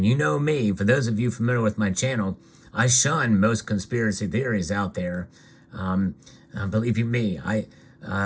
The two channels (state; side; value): identical; both; correlation 1.00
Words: you know me, for those of you familiar with my channel, I shun most conspiracy theories out there. Believe you me,